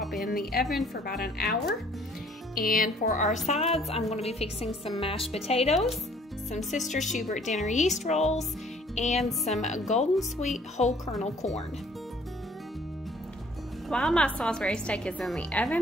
in the oven for about an hour. And for our sides, I'm going to be fixing some mashed potatoes, some Sister Schubert dinner yeast rolls, and some golden sweet whole kernel corn. While my Salisbury steak is in the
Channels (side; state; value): both; normal; correlation 0.58